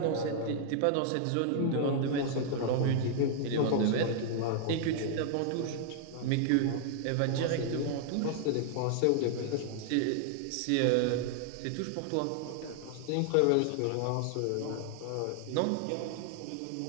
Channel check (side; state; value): both; different; correlation 0.00